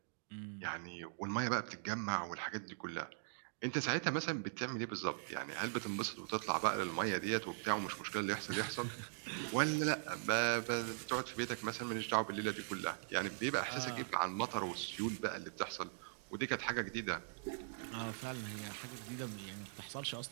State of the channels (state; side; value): silent; left; digital silence